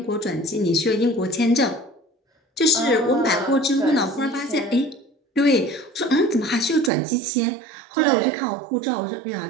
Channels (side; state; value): left; drops out; at 6.9 s